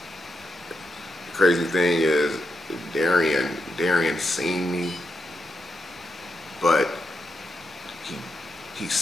The crazy thing is Darian seen me, but he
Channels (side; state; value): both; normal; correlation 0.85